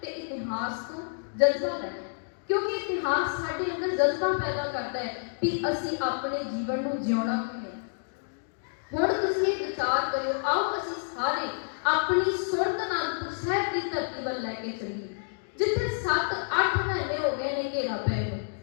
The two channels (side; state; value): right; silent; digital silence